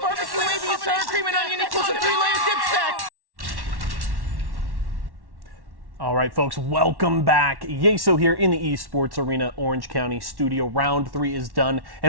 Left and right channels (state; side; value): late; left; 1.1 ms